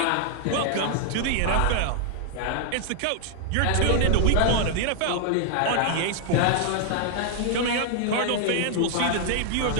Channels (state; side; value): different; both; correlation 0.00